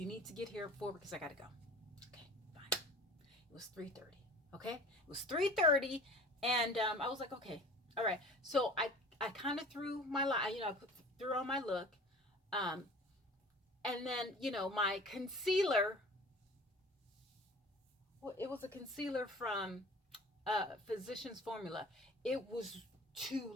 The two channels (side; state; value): both; normal; correlation 0.43